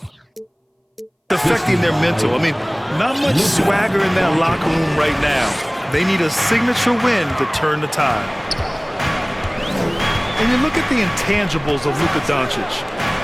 affecting their mental. I mean, not much swagger in that locker room right now. They need a signature win to turn the tide. And you look at the intangibles of LUKA Doncic.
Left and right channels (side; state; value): both; identical; correlation 1.00